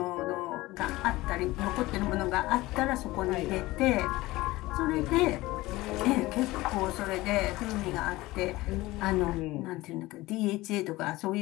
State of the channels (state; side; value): quieter; right; 19.1 dB